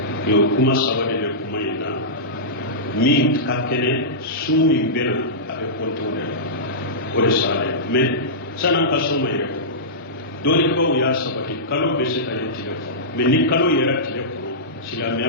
o kuma saba de bɛ kuma in na min ka kɛnɛ su min bɛ na a bɛ compter o de la o de salen mais san'an ka so ma yɛrɛ dɔɔnibaw y'a sabati kalo bɛ se ka ye tile kɔnɔ mais ni kalo yɛrɛ tile kɔnɔ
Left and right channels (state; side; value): normal; both; correlation -0.16